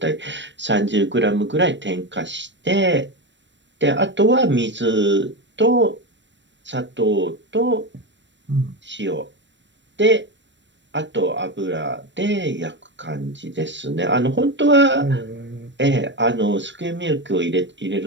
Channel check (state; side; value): late; left; 0.53 ms